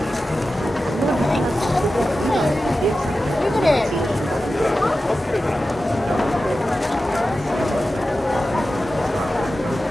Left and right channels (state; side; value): normal; both; correlation 0.93